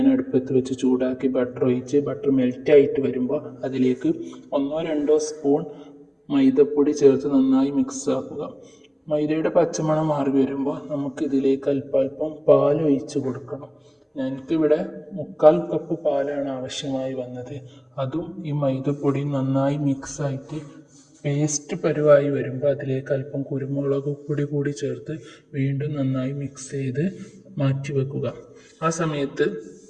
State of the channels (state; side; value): identical; both; correlation 1.00